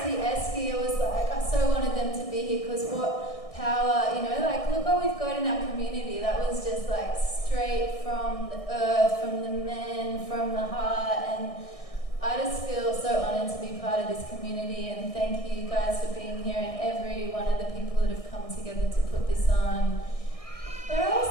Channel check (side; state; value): right; late; 1.6 ms